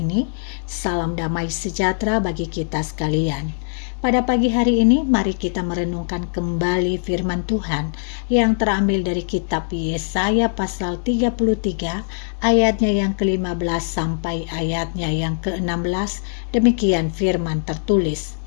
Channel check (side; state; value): right; silent; digital silence